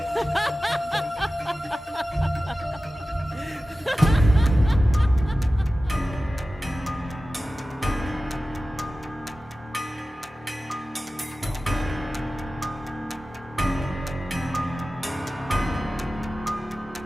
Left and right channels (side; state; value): both; normal; correlation 0.95